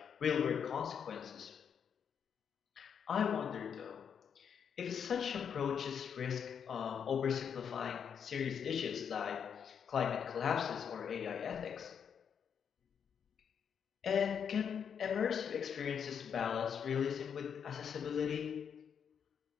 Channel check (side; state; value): right; quieter; 7.5 dB